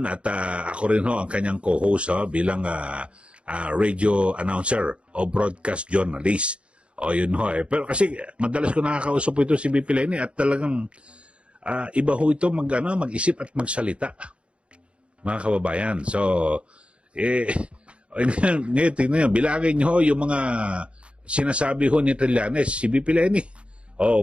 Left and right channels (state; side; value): late; left; 0.059 ms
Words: at ako rin ho ang kanyang co-host bilang radio announcer o broadcast journalist. Yun ho eh. Pero kasi madalas ko nakakausap po ito si BP Lenny at talagang iba ho ito mag-isip at magsalita. Mga kababayan. So, ngayon, tingnan nyo, bilangin nyo yung mga sinasabi ho ni Trillanes, si BP Lenny,